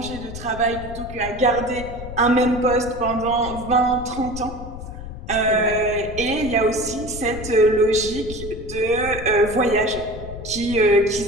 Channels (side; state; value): left; noise; rumble, 11 dB below the sound